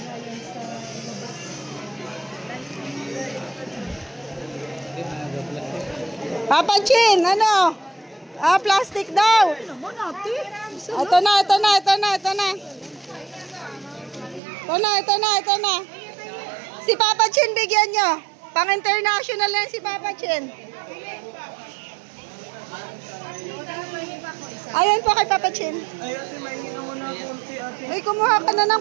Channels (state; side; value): drops out; left; at 14.4 s